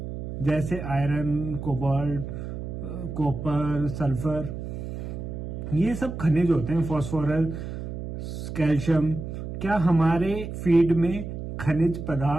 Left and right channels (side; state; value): right; noise; hum, 7 dB below the sound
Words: जैसे आयरन, कोबाल्ट, कॉपर, सल्फर, ये सब खनिज होते हैं, फास्फोरस, कैल्शियम, क्या हमारे फीड में खनिज